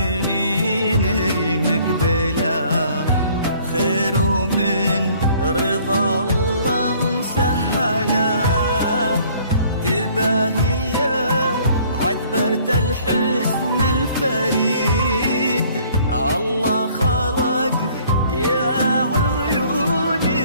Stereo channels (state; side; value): inverted; both; correlation -0.58